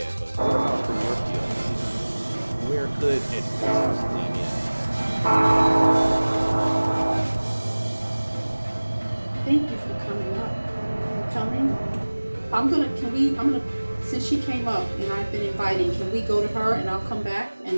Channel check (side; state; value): both; inverted; correlation -1.00